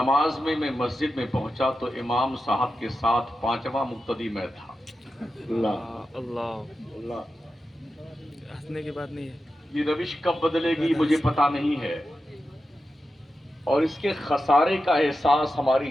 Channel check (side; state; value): both; normal; correlation 0.91